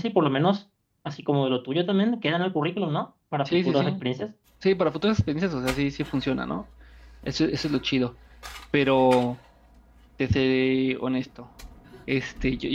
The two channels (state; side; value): identical; both; correlation 1.00